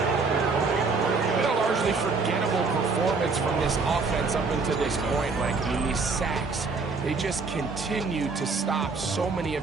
Been a largely forgettable performance from this offense up until this point. Like, I mean, these sacks, they just continue to stop so many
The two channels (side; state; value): left; quieter; 4.3 dB